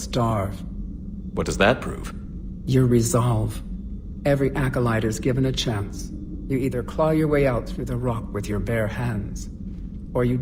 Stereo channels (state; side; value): identical; both; correlation 1.00